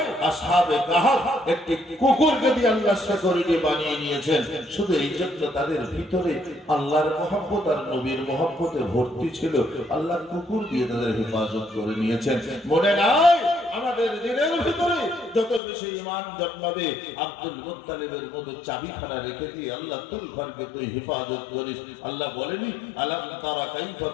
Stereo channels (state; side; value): drops out; right; at 15.6 s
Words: আসহাবে কাহাফ একটি কুকুরকে দিয়ে আল্লাহ সিকিউরিটি বানিয়ে নিয়েছেন, শুধু এই জন্য তাদের ভিতরে আল্লাহর মহব্বত আর নবীর মহব্বতে ভর্তি ছিল, আল্লাহ কুকুর দিয়ে তাদের হেফাজত করে নিয়েছেন। মনে নাই আমাদের দিনের ভিতরে যত বেশি ঈমান জন্মাবে আব্দুল মুত্তালিবের মতো চাবিখানা রেখে দিয়ে আল্লাহ তুল ঘরকে তুই হেফাজত করিস। আল্লাহ বলেনি আলাম তারা কাইফা